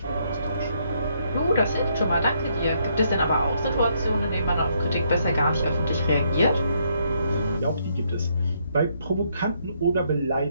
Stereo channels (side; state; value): both; inverted; correlation -0.73